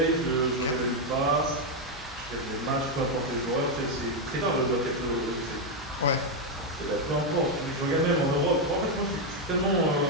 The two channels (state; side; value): normal; both; correlation 0.03